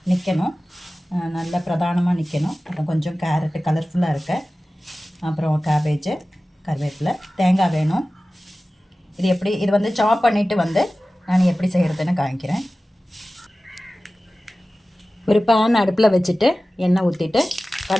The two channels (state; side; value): normal; both; correlation 0.96